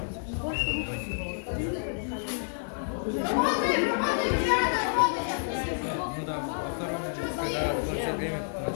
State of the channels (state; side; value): silent; right; 58 dB below the other